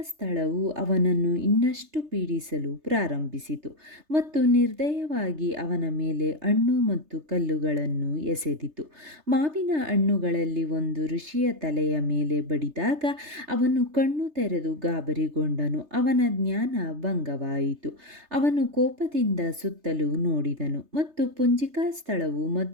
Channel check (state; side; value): late; left; 3.3 ms